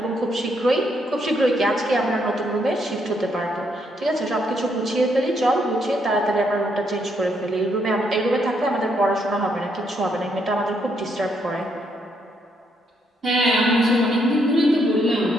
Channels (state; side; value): normal; both; correlation 0.75